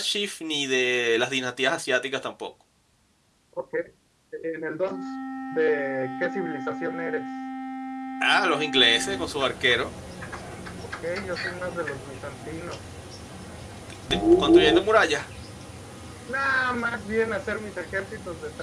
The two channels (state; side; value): identical; both; correlation 1.00